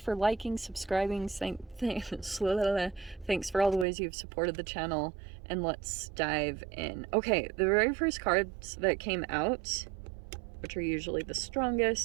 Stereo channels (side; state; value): left; drops out; at 3.9 s